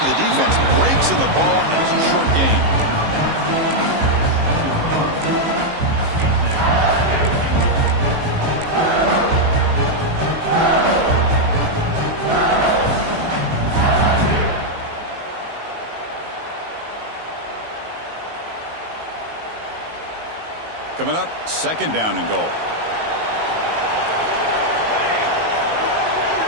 the defense breaks in the ball, and it's a short gain. Coming up, second down and goal.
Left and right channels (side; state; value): left; late; 19 ms